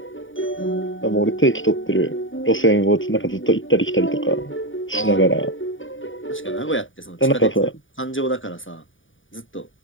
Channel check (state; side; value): late; right; 0.57 ms